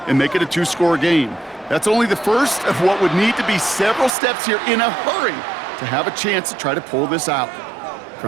and make it a 2-score game. That's only the first of what would need to be several steps here in a hurry to have a chance to try to pull this out.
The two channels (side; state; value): left; drops out; at 4.1 s